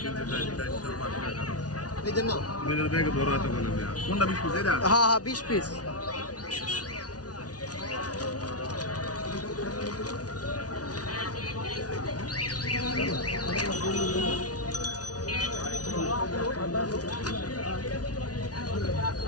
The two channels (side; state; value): right; late; 0.68 ms